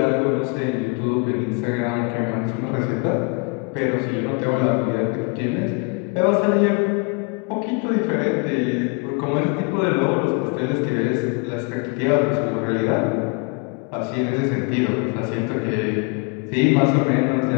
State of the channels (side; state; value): right; quieter; 33.5 dB